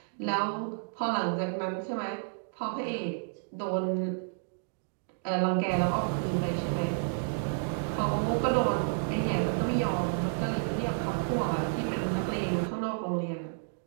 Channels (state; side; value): silent; left; digital silence